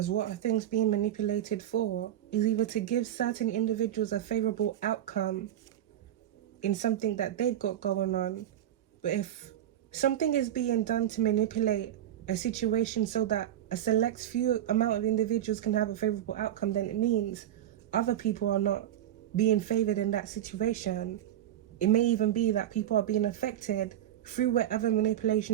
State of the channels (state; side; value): quieter; left; 11.6 dB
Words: what are things being manipulated for is either to give certain individuals a favorable outcome in something that they've got going on. But if something is being done to manipulate a situation so that a select few amount of individuals can have a favorable outcome, then it means other people are not being favored in that situation. It may even be that people are being affected through whatever